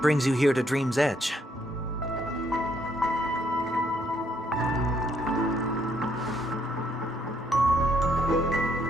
brings you here to Dream's Edge?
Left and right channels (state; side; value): normal; both; correlation 0.71